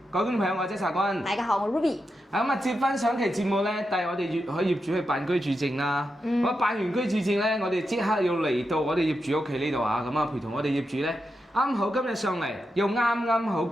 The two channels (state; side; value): normal; both; correlation 0.87